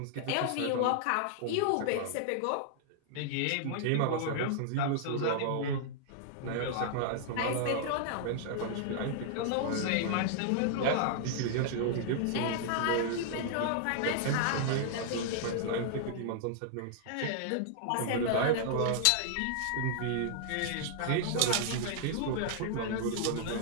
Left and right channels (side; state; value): both; different; correlation -0.01